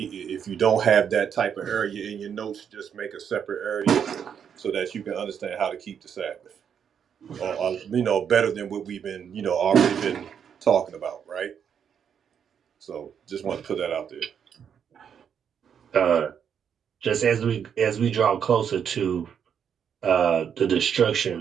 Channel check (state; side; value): quieter; left; 7.9 dB